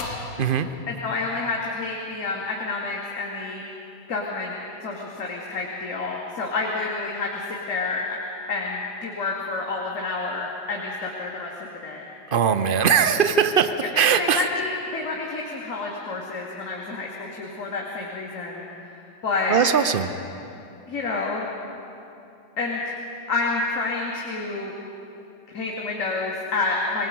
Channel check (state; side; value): late; right; 2.5 ms